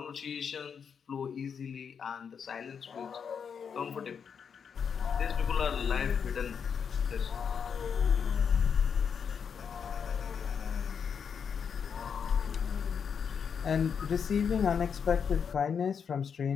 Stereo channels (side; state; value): right; quieter; 6.8 dB